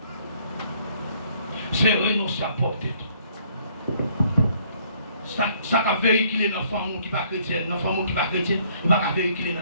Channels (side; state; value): both; inverted; correlation -0.63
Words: c'est renoncer à porter tout. Ça va véhiculer dans l'enfant qui n'est pas chrétien, l'enfant qui n'est pas chrétien, il va véhiculer dans